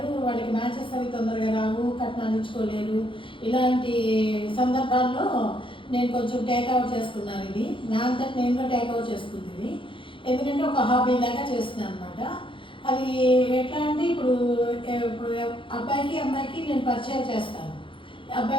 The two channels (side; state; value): right; late; 0.25 ms